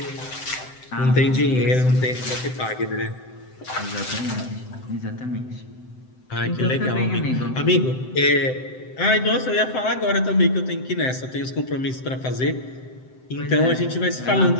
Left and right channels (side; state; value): right; late; 7.8 ms